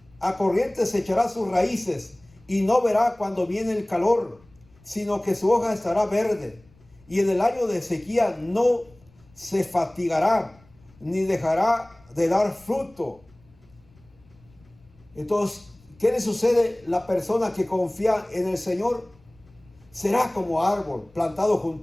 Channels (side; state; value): left; noise; rumble, 29 dB below the sound